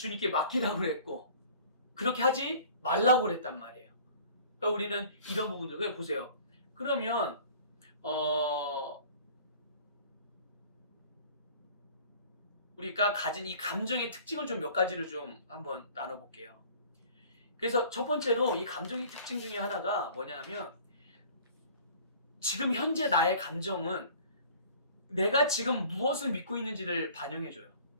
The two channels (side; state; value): both; inverted; correlation -0.49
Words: 맡기라고 그랬고 그렇게 하지 말라고 그랬단 말이에요. 그러니까 우리는 이런 부분들 보세요. 그러면 우리가 가진 이 감정의 특징을 좀 몇 가지를 좀 한번 나눠볼게요. 그래서 첫 번째로 이 감정의 특징 중에 하나가 뭐냐면 지금 현재 나의 감정은 내가 지금 무엇을 믿고 있는지를 반영해줘요.